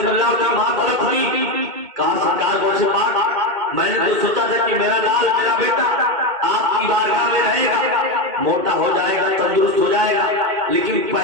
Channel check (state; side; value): late; left; 2.2 ms